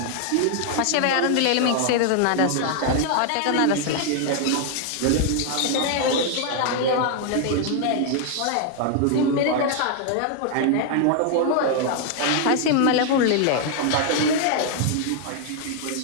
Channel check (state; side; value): different; both; correlation 0.00